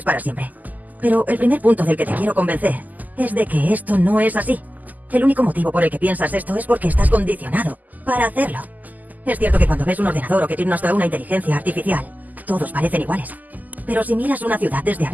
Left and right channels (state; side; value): late; left; 0.081 ms